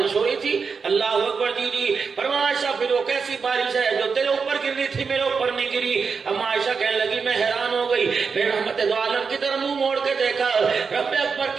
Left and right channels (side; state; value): left; quieter; 5.4 dB